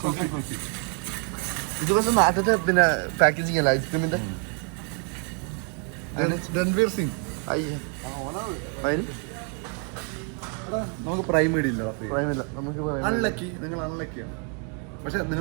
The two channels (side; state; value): left; quieter; 39.4 dB